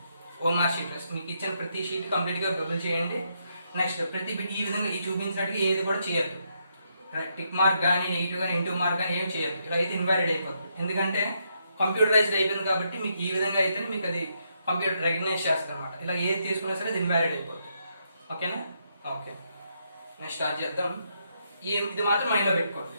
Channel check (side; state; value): both; inverted; correlation -0.78